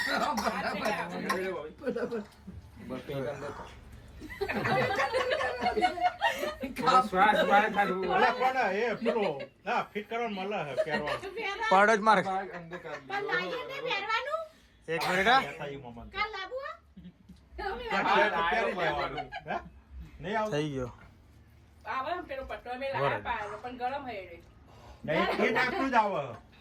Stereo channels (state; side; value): identical; both; correlation 1.00